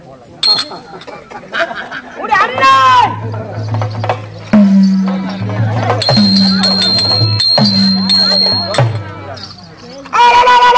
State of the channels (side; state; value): both; identical; correlation 1.00